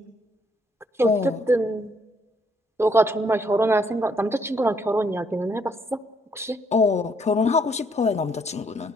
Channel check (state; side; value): normal; both; correlation 0.69